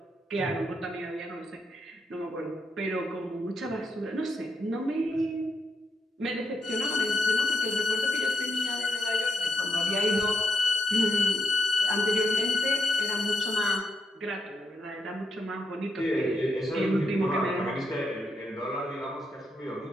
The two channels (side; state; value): both; normal; correlation 0.80